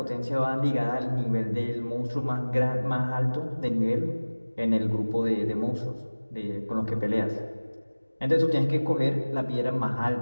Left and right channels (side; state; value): both; inverted; correlation -1.00